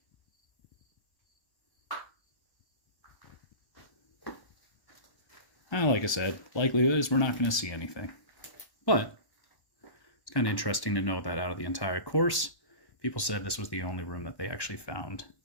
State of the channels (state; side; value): late; right; 1.1 ms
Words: Like I said, likelihood is we're not going to see anything. But it's kind of interesting to know that out of the entire course, people said this was the only room that they actually found